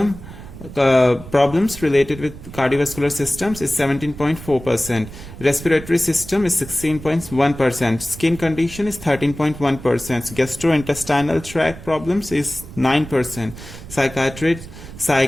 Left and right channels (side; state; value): right; noise; rumble, 14 dB below the sound